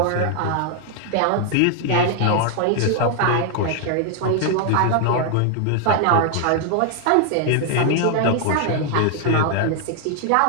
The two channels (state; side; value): different; both; correlation 0.00